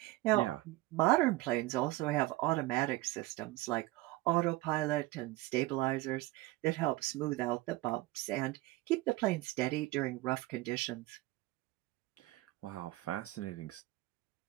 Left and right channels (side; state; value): left; quieter; 19.2 dB